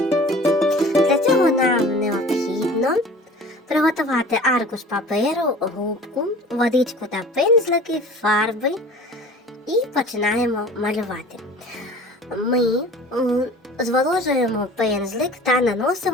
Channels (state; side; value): normal; both; correlation 0.43